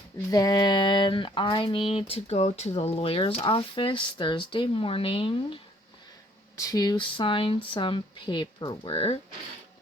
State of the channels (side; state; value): both; normal; correlation 0.61